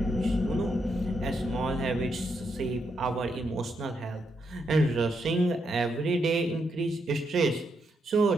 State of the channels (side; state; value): both; normal; correlation 0.80